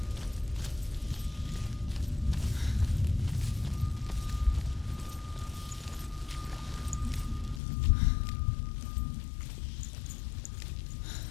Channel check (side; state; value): right; drops out; at 7.6 s